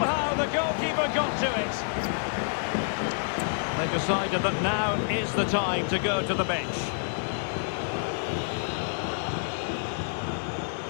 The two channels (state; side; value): silent; right; digital silence